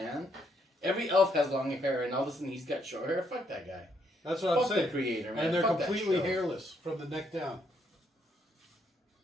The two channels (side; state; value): both; normal; correlation 0.73